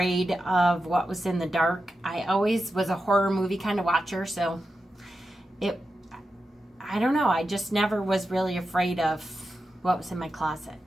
of what was in the dark. I always was a horror movie kind of watcher, so I don't know, I just never was really afraid of what was in my closet.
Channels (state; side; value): normal; both; correlation 0.90